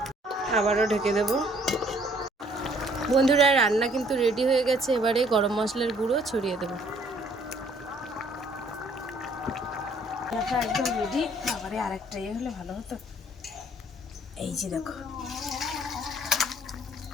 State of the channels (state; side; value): normal; both; correlation 0.61